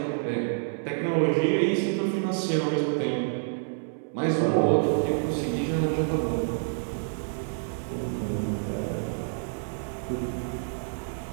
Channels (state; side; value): silent; left; 59 dB below the other